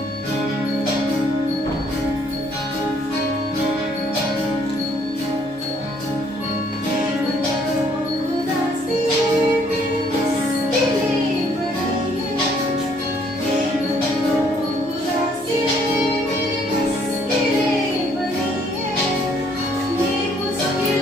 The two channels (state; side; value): normal; both; correlation 0.65